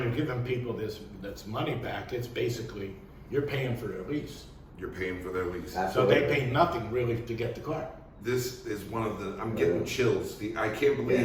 you're giving people that's money back, it's basically you're paying for their lease. You're paying for their lease. Absolutely. So they pay nothing really to get the car. This is one of the, I'm getting chills. I can't believe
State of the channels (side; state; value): both; identical; correlation 1.00